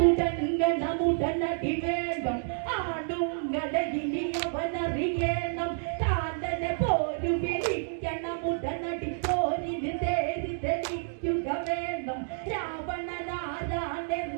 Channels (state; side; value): silent; left; digital silence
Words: വേണം ആണുങ്ങളെ ഇനി അവനറിയണം കാലനെ പോരു വിളിക്കണമുടനടി പോരിന് തേരി തെളിക്കുക വേണം